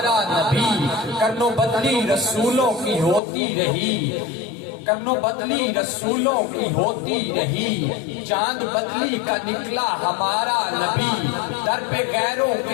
نبی، کرنو بدلی رسولوں کی ہوتی رہی، کرنو بدلی رسولوں کی ہوتی رہی، چاند بدلی کا نکلا ہمارا نبی، در پہ غیروں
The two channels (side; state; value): right; drops out; at 3.2 s